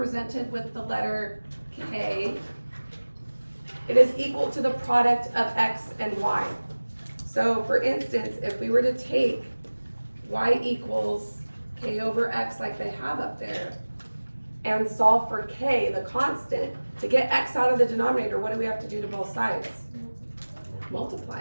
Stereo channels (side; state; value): both; inverted; correlation -1.00